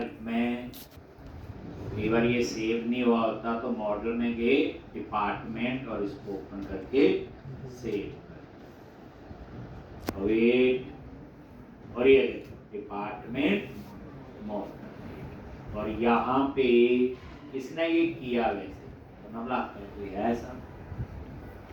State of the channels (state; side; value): identical; both; correlation 1.00